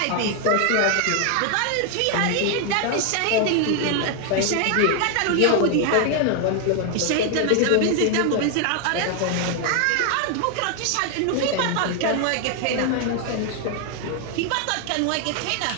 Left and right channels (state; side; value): different; both; correlation 0.00